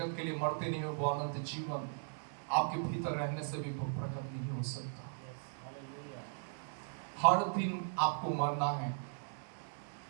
के लिए मरते नहीं हो, वो अनंत जीवन आपके भीतर रहने से भी प्रकट नहीं हो सकता। हर दिन आपको मरना है।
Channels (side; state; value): left; silent; digital silence